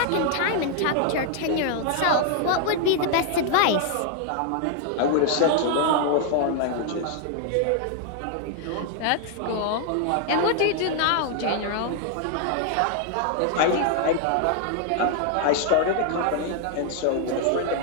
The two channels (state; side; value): different; both; correlation 0.00